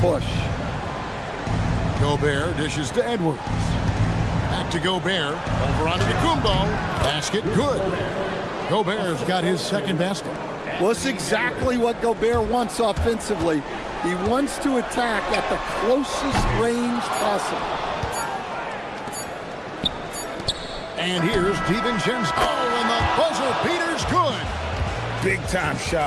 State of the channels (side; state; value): both; identical; correlation 1.00